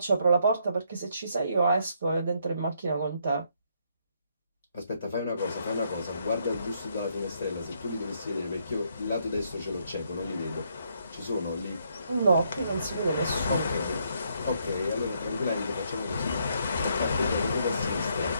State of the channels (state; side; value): inverted; both; correlation -0.73